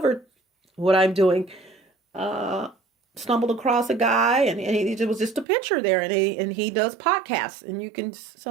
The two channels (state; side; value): drops out; left; at 5.5 s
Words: what I'm doing, stumbled across a guy and it was just a picture there, and he does podcasts, and you can,